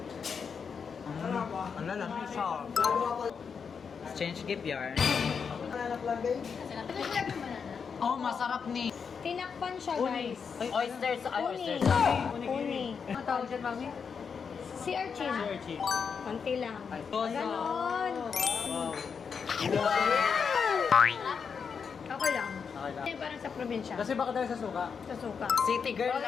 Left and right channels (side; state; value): right; quieter; 6.2 dB